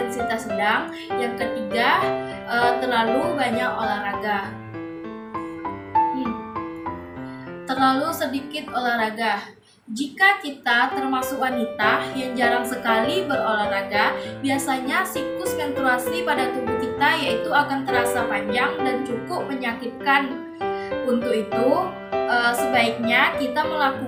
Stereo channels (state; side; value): identical; both; correlation 1.00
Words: sedang, yang ketiga terlalu banyak olahraga. Terlalu sedikit olahraga. Jika kita termasuk wanita yang jarang sekali berolahraga, biasanya siklus menstruasi pada tubuh kita yaitu akan terasa panjang dan cukup menyakitkan. Untuk itu, sebaiknya kita